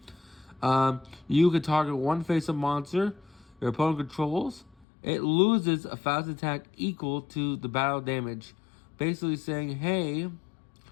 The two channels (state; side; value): drops out; right; at 4.9 s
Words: you can target one face-up monster your opponent controls. It loses a fast attack equal to the battle damage. Basically saying, hey,